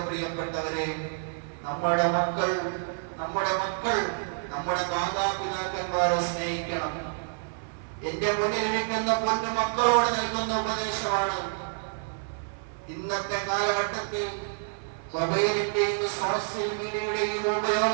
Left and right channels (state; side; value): silent; left; 59 dB below the other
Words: പ്രിയപ്പെട്ടവരെ, നമ്മുടെ മക്കൾ നമ്മുടെ മാതാപിതാക്കന്മാരെ സ്നേഹിക്കണം. എന്റെ മുന്നിലിരിക്കുന്ന പൊന്നു മക്കളോട് നൽകുന്ന ഉപദേശമാണ്. ഇന്നത്തെ കാലഘട്ടത്തിൽ മൊബൈലിന്റെയും സോഷ്യൽ മീഡിയയുടെയും